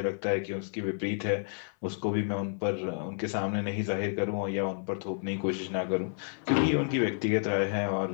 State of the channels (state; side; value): silent; right; 58 dB below the other